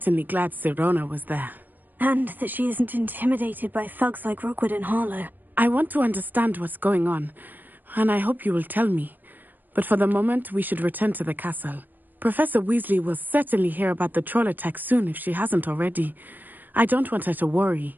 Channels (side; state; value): left; late; 0.089 ms